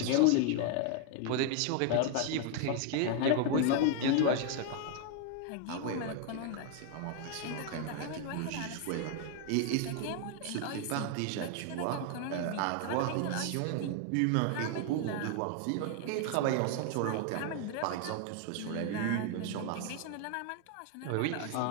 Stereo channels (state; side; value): different; both; correlation 0.00